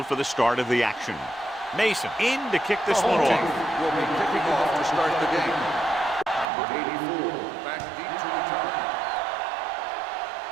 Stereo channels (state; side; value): drops out; left; at 6.5 s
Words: for the start of the action. Mason in to kick this one off. Will be kicking off to start the game. Number 84, back deep to return.